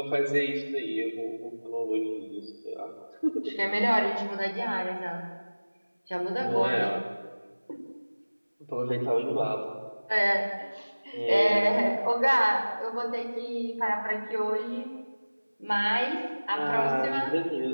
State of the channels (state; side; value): inverted; both; correlation -1.00